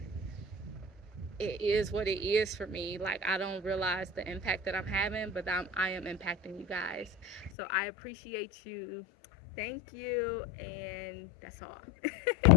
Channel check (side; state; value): right; drops out; at 7.5 s